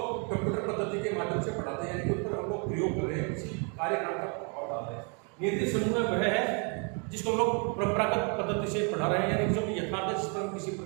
कंप्यूटर पद्धति के माध्यम से पढ़ाते हैं, यानी कि उस पर हम लोग प्रयोग कर रहे हैं, किसी कार्यक्रम का प्रभाव डाल रहे हैं। नियंत्रित समूह वह है जिसको हम लोग परंपरागत पद्धति से पढ़ा रहे हैं, यानी जो कि यथार्थ जिस पर हम किसी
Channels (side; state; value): left; quieter; 36.0 dB